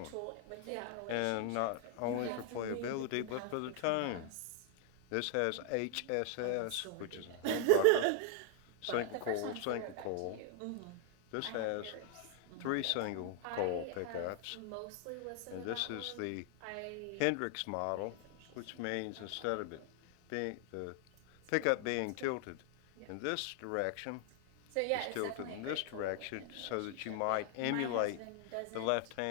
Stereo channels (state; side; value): different; both; correlation 0.00